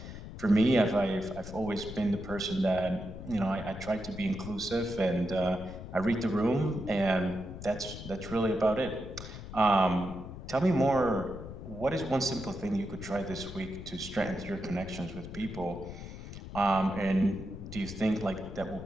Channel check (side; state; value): left; noise; rumble, 11 dB below the sound